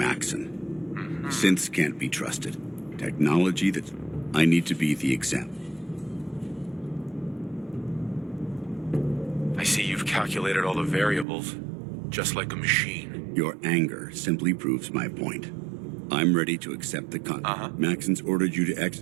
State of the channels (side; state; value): left; drops out; at 11.2 s